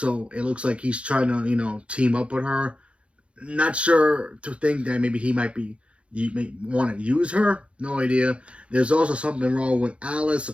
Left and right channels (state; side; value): late; left; 0.060 ms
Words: it looks like he's trying to, team up with her. Not sure to think that maybe he might be you may want to use her. No idea. There's also something wrong with Alice.